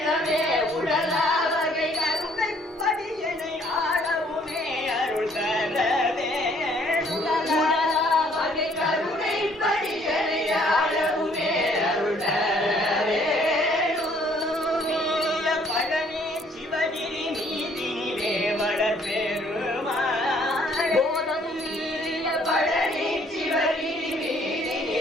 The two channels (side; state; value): both; normal; correlation 0.62